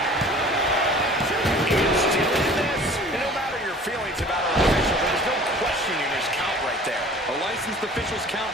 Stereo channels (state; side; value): normal; both; correlation 0.46